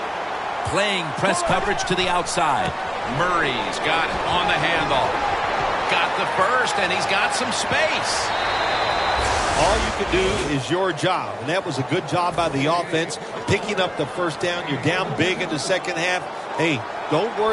Playing press coverage to the outside. Murray's got it on the handle. Got the first, and he's got some space. All you can do is your job, and that was a good job by the offense, picking up the first down. You're down big in the second half. Hey, don't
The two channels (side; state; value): both; identical; correlation 1.00